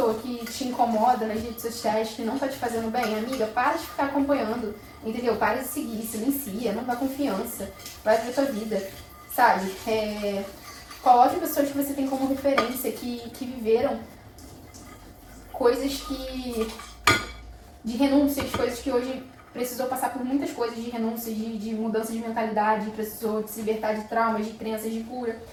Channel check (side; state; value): both; identical; correlation 1.00